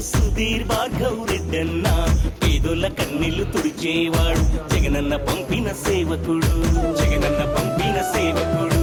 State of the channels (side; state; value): both; identical; correlation 1.00